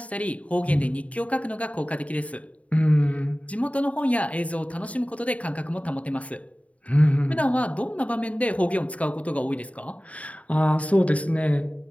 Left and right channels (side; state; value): right; late; 0.067 ms